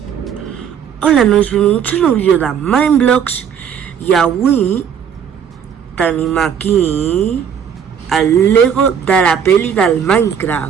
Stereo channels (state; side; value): quieter; left; 7.8 dB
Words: Hola, nois, benvinguts a un nou vídeo de Mindblocks i avui tenim aquí el Lego de la peli del